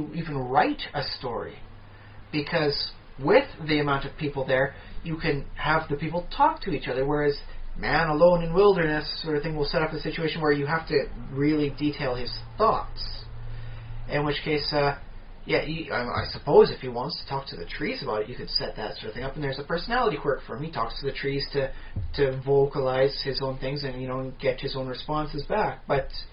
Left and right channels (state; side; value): identical; both; correlation 1.00